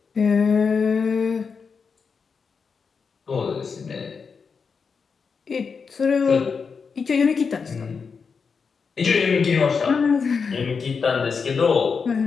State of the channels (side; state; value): right; quieter; 5.5 dB